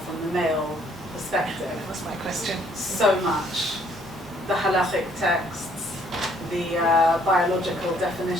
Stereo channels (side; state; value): both; normal; correlation 0.64